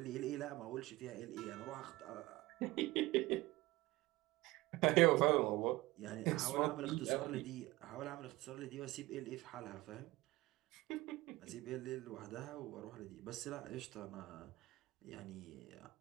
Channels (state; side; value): quieter; left; 19.5 dB